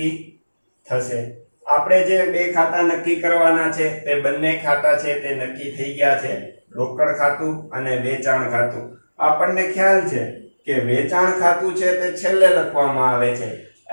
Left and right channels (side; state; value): both; inverted; correlation -1.00